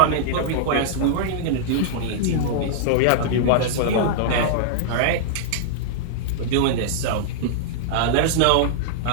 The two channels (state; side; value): different; both; correlation -0.02